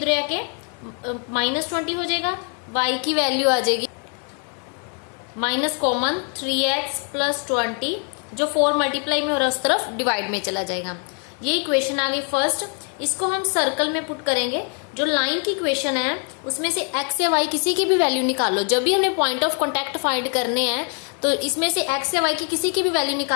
आके -20 हो जाएगा। y की वैल्यू आ जाएगी माइनस कॉमन 3x + 20, जो 4 मल्टीप्लाई में हो रहा है उस तरफ डिवाइड में चला जाएगा। ये इक्वेशन आ गई फर्स्ट। इसको हम सर्कल में पुट करेंगे। जो लाइन की इक्वेशन है उसमें से x या y किसी की भी वैल्यू निकालो। जब भी हमें पॉइंट ऑफ कॉन्टैक्ट फाइंड करने हैं तो इसमें से x या y की किसी की भी वैल्यू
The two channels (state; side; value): quieter; right; 39.3 dB